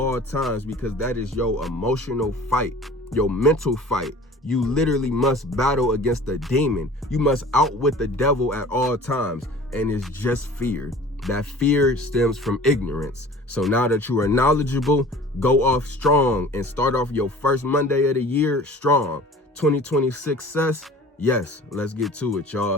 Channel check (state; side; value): normal; both; correlation 0.44